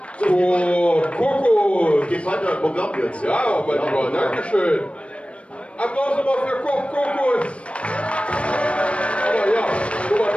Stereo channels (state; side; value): late; right; 0.061 ms